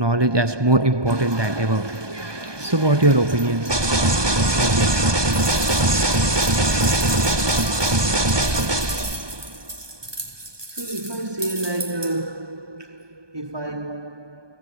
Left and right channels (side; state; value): left; late; 1.2 ms